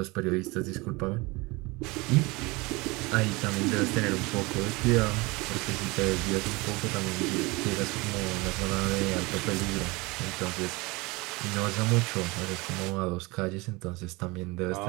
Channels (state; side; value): quieter; left; 24.4 dB